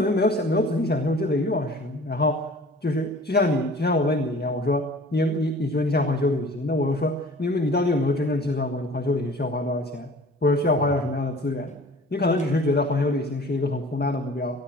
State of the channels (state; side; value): normal; both; correlation 0.46